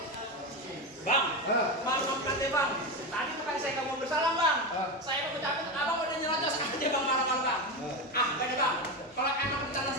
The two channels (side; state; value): both; normal; correlation 0.16